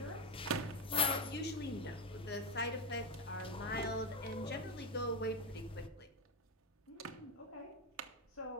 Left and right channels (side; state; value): both; normal; correlation 0.12